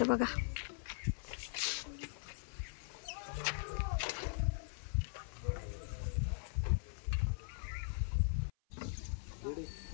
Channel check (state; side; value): silent; right; 51 dB below the other